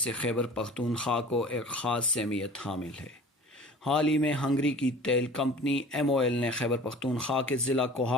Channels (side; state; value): both; normal; correlation 0.43